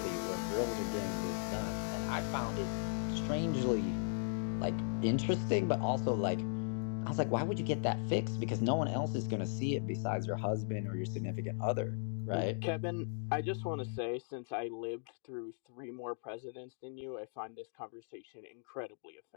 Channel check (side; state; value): right; silent; digital silence